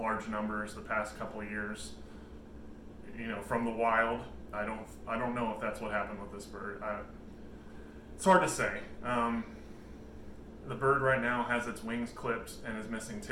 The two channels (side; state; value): both; identical; correlation 1.00